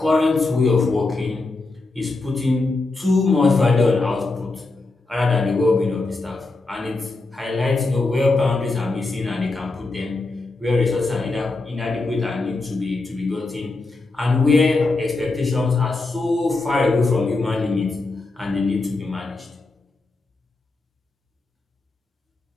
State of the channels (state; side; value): quieter; right; 3.3 dB